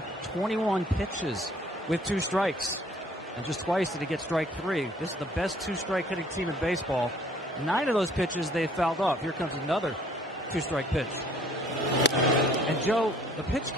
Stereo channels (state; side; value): normal; both; correlation 0.59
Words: 21 pitches with 2 strikes. And just twice did he get strike 3. This is the best 2-strike hitting team in baseball. 9 of those pitches they fouled off. Here comes another 2-strike pitch. And Joe, the pitch